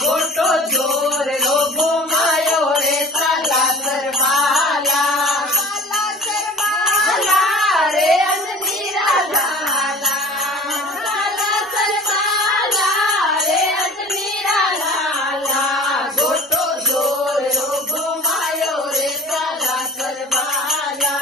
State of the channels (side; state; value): both; normal; correlation 0.40